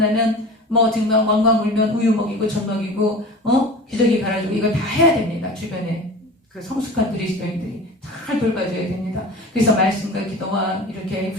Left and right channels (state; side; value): normal; both; correlation 0.36